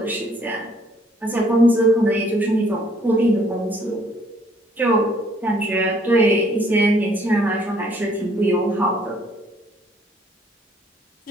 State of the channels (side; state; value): both; normal; correlation 0.63